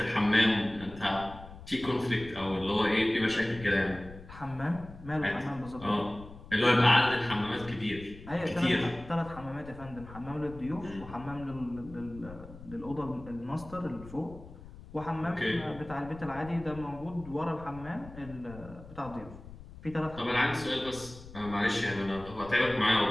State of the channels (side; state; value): left; noise; rumble, 16 dB below the sound